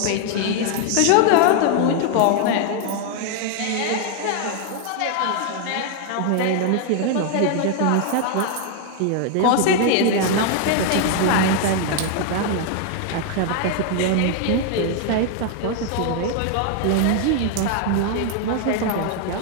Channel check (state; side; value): different; both; correlation 0.00